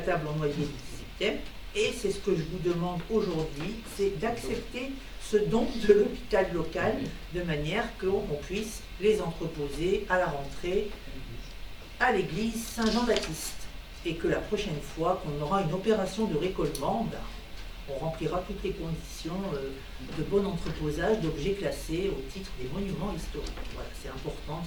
en noyer du XVIIIe. Et c'est ce que je vous demande aujourd'hui, c'est d'accepter ce don de l'hôpital local de manière qu'on puisse les entreposer à la rentrée à l'église Saint-Jean-Baptiste, et que la prochaine fois qu'on aura une opération de récollement, on remplira toutes les conditions de bon entreposage d'objets classés au titre des monuments historiques. Voilà, c'est important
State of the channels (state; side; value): identical; both; correlation 1.00